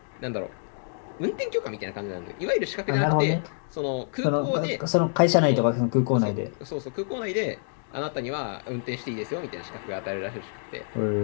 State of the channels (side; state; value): right; silent; digital silence